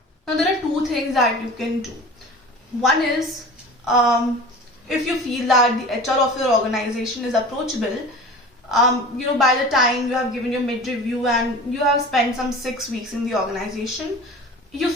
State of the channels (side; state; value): both; normal; correlation 0.38